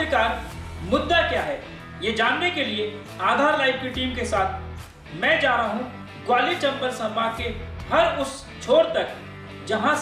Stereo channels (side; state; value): both; identical; correlation 1.00